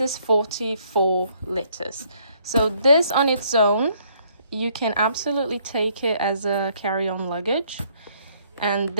is 44 liters. So this on its own, you can absolutely take it as a carry-on luggage, and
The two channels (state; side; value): inverted; both; correlation -0.66